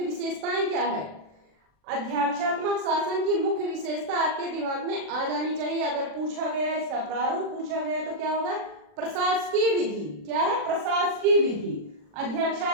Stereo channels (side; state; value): left; late; 40 ms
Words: विशेषताएं क्या है। अध्यक्षात्मक शासन की मुख्य विशेषता आपके दिमाग में आ जानी चाहिए। अगर पूछा गया, इसका प्रारूप पूछा गया तो क्या होगा, प्रशासकीय विधि। क्या है, प्रशासकीय विधि।